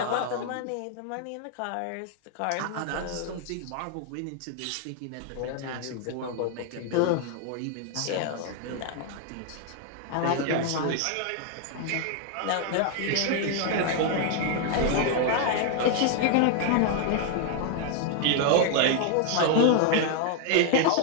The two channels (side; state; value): both; different; correlation 0.00